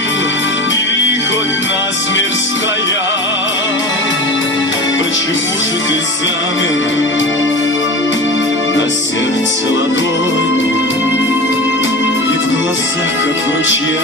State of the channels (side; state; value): both; normal; correlation 0.32